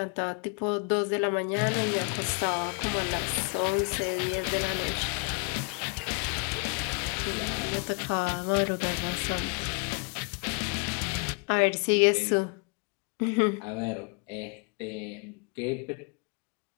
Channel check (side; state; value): right; quieter; 34.2 dB